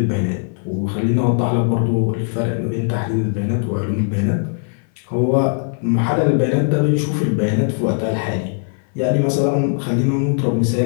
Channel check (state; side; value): silent; right; 58 dB below the other